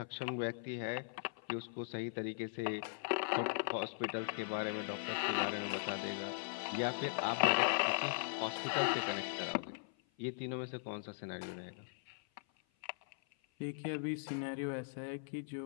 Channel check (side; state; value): right; silent; 51 dB below the other